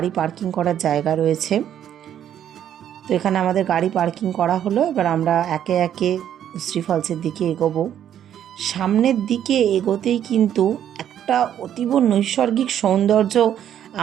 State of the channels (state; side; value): quieter; left; 10.2 dB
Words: পার্কিং করার জায়গা রয়েছে। তো এখানে আমাদের গাড়ি পার্কিং করা হলো। এবার আমরা একে একে উশ্রী ফলসের দিকে এগোবো। সামনের দিকে এগোতেই কিন্তু একটা অতীব নৈসর্গিক সৌন্দর্য